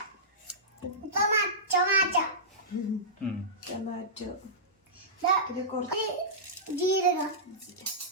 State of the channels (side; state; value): both; normal; correlation -0.17